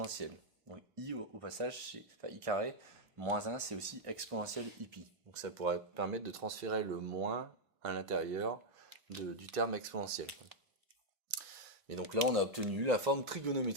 Donc i au passage, enfin i carré, moins 1, c'est aussi exponentielle i pi. Donc ça pourrait permettre de transférer le moins à l'intérieur du terme exponentiel. Et donc là, on a obtenu la forme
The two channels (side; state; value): both; normal; correlation -0.01